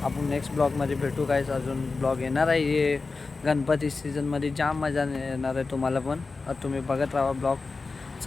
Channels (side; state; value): right; quieter; 4.0 dB